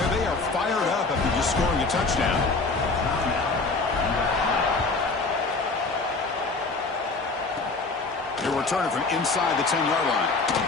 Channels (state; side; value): quieter; right; 3.8 dB